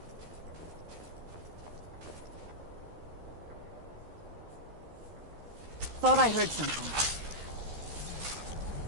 Thought I heard something.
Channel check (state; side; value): late; left; 13 ms